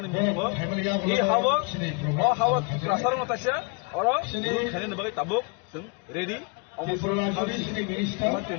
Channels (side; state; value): right; quieter; 31.9 dB